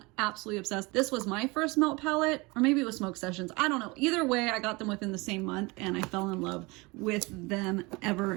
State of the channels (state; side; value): quieter; left; 25.1 dB